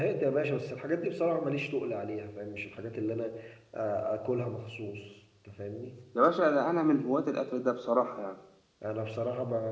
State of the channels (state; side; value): identical; both; correlation 1.00